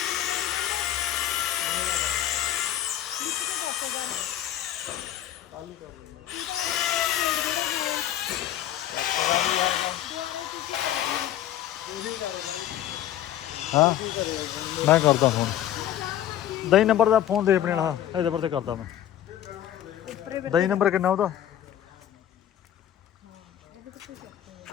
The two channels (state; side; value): quieter; right; 11.8 dB